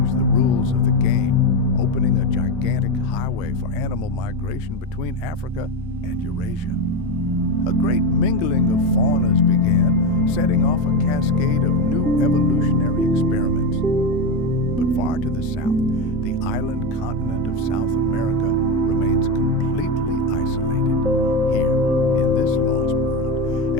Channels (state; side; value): normal; both; correlation 0.14